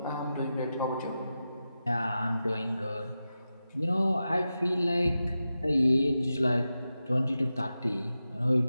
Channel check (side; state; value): both; inverted; correlation -0.91